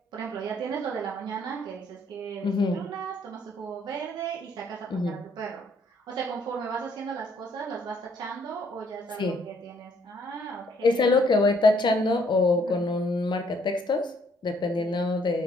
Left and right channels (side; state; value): both; normal; correlation 0.66